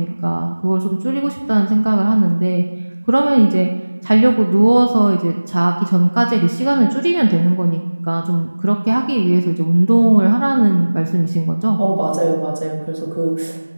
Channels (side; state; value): both; inverted; correlation -1.00